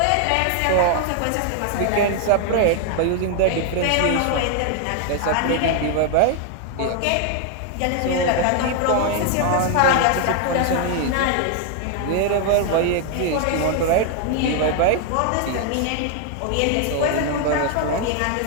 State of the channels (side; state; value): both; different; correlation 0.00